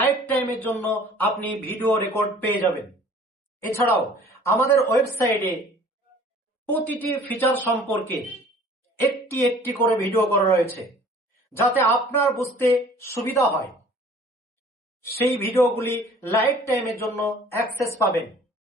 টাইমের জন্য আপনি ভিডিও রেকর্ড পেয়ে যাবেন। এছাড়াও আমাদের ওয়েবসাইটে প্রতিটি ফিচার সম্পর্কে একটি একটি করে ভিডিও করা রয়েছে, যাতে আপনার বুঝতে সুবিধা হয়। সেই ভিডিওগুলি লাইভ টাইমের জন্য অ্যাক্সেস পাবেন।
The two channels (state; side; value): normal; both; correlation 0.50